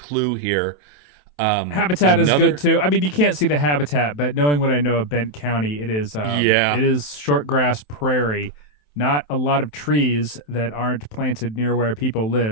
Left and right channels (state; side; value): late; right; 27 ms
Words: here. Habitat is good Another, too. I mean, you can't see the habitat, but knowing what I know of Bent County, yeah, it is short grass prairie, not a lot of trees that aren't planted near where people